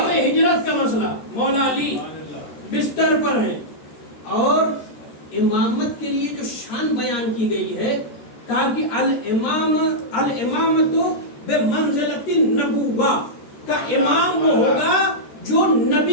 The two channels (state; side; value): late; right; 13 ms